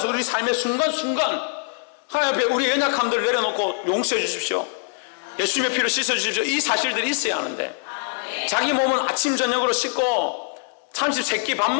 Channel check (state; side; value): silent; right; 57 dB below the other